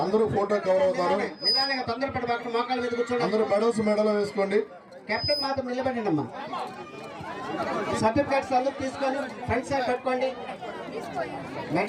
అందరూ ఫోటో కవర్ అవుతారు. నిదానంగా తొందరపడి మోకాళ్ళ మీద కూర్చోండి. అందరూ మెడల్ వేసుకోండి. కెప్టెన్ మాత్రం నిలబడండి అమ్మా. సర్టిఫికేట్స్ అందరూ తీసుకొని ఫ్రంట్ సైడ్ పెట్టుకోండి.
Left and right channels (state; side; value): identical; both; correlation 1.00